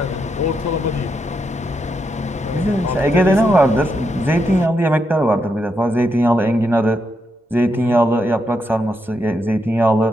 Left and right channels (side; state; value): both; normal; correlation 0.82